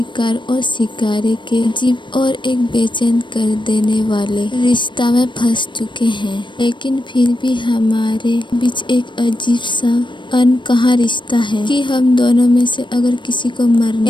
और शिकारी के अजीब और एक बेचैन कर देने वाले रिश्ता में फंस चुके हैं, लेकिन फिर भी हमारे बीच एक अजीब सा अनकहा रिश्ता है कि हम दोनों में से अगर किसी को मरना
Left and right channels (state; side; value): late; right; 0.23 ms